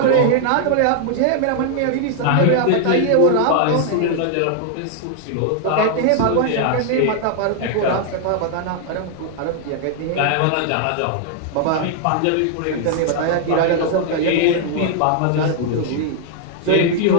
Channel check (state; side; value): different; both; correlation 0.00